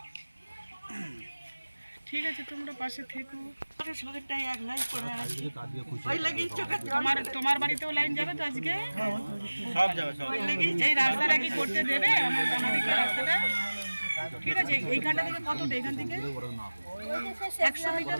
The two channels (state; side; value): inverted; both; correlation -1.00